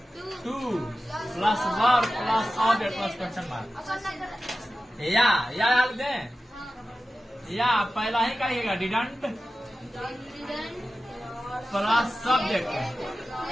two plus verb plus object plus question mark. या डाल दें, या पहला ही करिएगा didn't plus subject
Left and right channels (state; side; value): normal; both; correlation 0.94